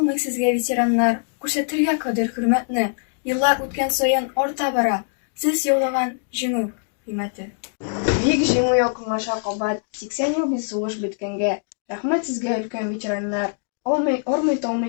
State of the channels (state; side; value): silent; right; digital silence